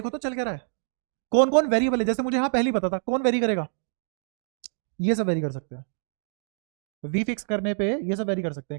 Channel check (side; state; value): left; silent; digital silence